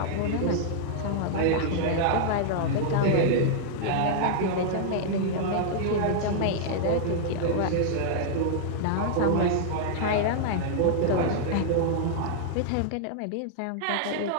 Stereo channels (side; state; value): both; different; correlation -0.01